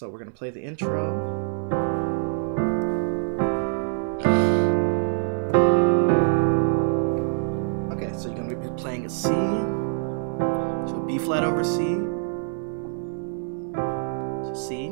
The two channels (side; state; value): left; silent; 62 dB below the other